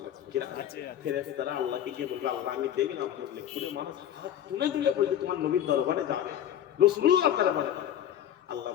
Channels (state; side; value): quieter; right; 10.6 dB